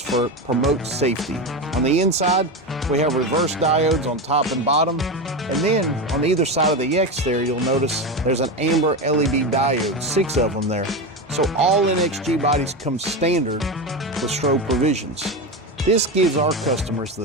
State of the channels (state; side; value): normal; both; correlation 0.18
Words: promote safety. On the inside, we have reverse diodes on top and bottom. And then on either side of the X there, you'll notice there's an amber LED diode, 6 of them there. So all NXG bodies come standard with strobe provisions. This gives our customers